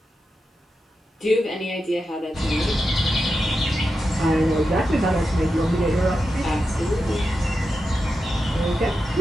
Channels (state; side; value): normal; both; correlation 0.89